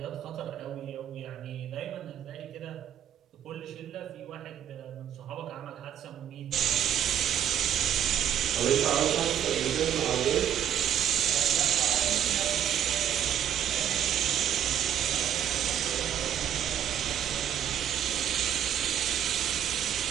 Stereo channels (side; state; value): left; quieter; 9.9 dB